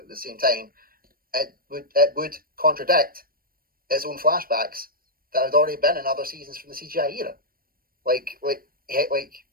at the same time, it would contradict its own flashbacks that had already been in other seasons from the CGI era, like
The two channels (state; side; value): late; left; 0.43 ms